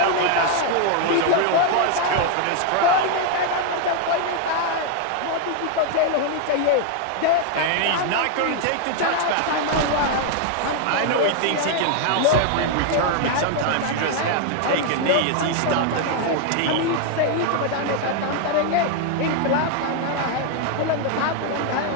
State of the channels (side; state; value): both; different; correlation 0.00